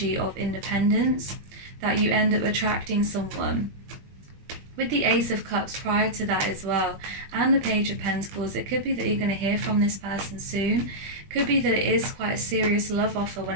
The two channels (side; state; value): left; late; 21 ms